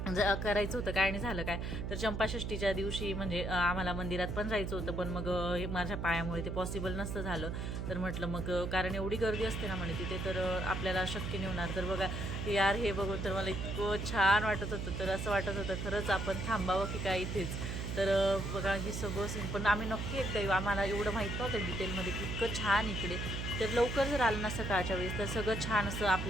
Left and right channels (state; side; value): noise; right; hum, 3 dB below the sound